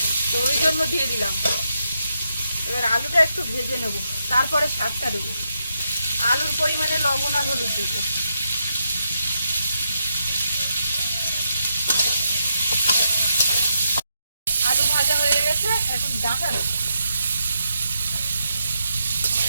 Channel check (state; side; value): inverted; both; correlation -0.82